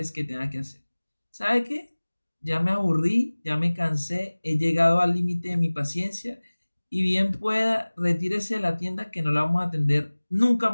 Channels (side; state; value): both; inverted; correlation -1.00